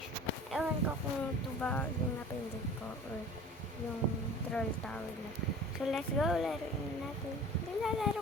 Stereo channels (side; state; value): both; normal; correlation 0.42